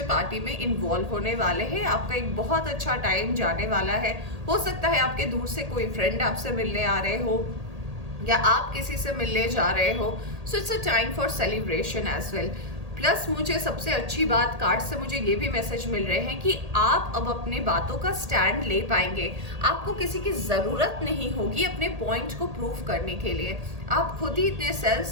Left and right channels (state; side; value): late; left; 1.8 ms